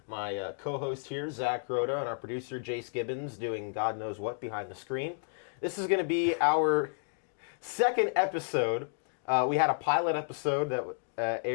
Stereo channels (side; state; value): right; silent; digital silence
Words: my co-host here, Zach Rhoda, and our producer, Jace Gibbons, doing God knows what behind the screen. This is going to be our second episode. We had a pilot episode that